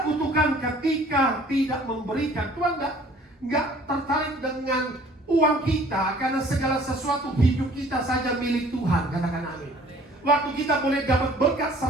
kutukan ketika tidak memberikan. Tuhan nggak tertarik dengan uang kita, karena segala sesuatu hidup kita saja milik Tuhan. Katakan amin. Waktu kita boleh dapat berkat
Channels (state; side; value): normal; both; correlation 0.53